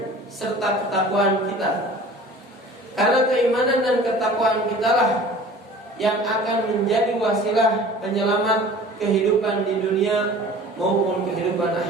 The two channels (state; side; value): normal; both; correlation 0.44